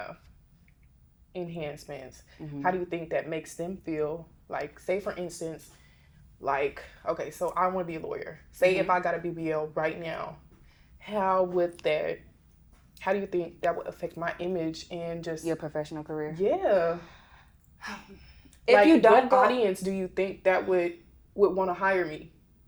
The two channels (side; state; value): both; identical; correlation 1.00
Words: enhancements, how do you think that makes them feel? Like, say for instance, like, okay, so I want to be a lawyer. Say if I got a BBL right now, how do you think that would affect my image and just your professional career? Yeah. If like, you don't what audience do you think that would want to hire me?